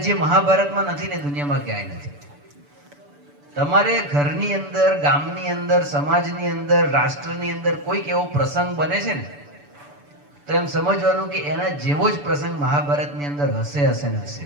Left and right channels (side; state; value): left; late; 6.9 ms